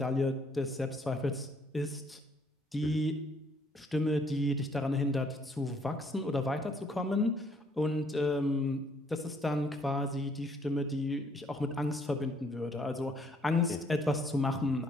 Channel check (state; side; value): normal; both; correlation 0.65